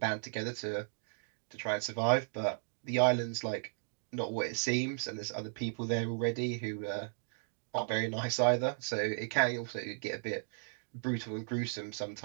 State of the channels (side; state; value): left; silent; digital silence